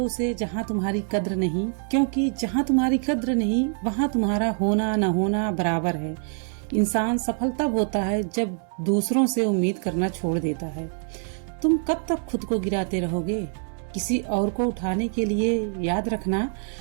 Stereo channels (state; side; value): silent; left; 56 dB below the other